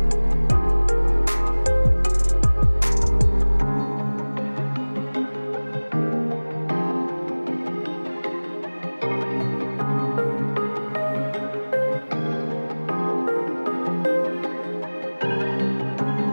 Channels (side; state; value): both; inverted; correlation -1.00